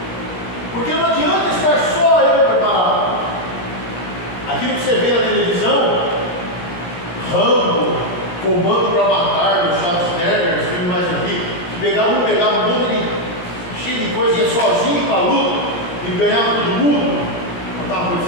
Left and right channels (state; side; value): late; right; 17 ms